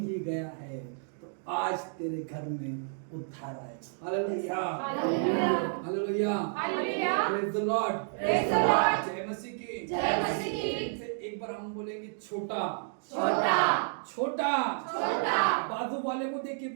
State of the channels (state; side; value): silent; left; digital silence